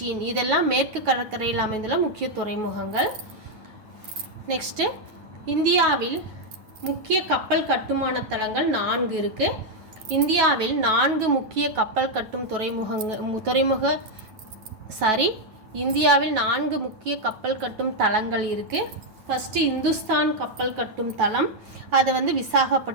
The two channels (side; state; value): left; late; 9.2 ms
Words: இதெல்லாம் மேற்கு கடற்கரையில் அமைந்துள்ள முக்கிய துறைமுகங்கள். நெக்ஸ்ட்டு இந்தியாவில் முக்கிய கப்பல் கட்டுமான தளங்கள் 4 இருக்குது. இந்தியாவில் 4 முக்கிய கப்பல் கட்டும் இந்தியாவில் 4 முக்கிய கப்பல் கட்டும் தளங்கள் இருக்குது. ஃபஸ்ட்டு இந்துஸ்தான் கப்பல் கட்டும் தளம், அது